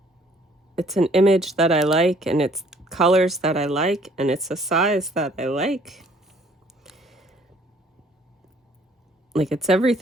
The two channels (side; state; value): both; normal; correlation 0.59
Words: an image that I like, and it's colors that I like, and it's a size that I like. Like, it's